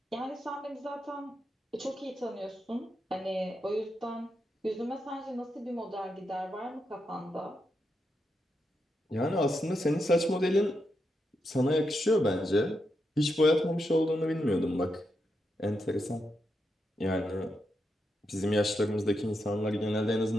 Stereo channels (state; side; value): normal; both; correlation 0.84